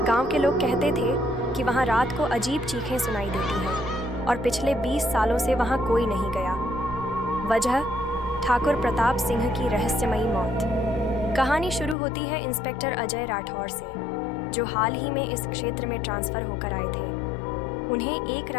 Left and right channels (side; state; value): right; drops out; at 12.0 s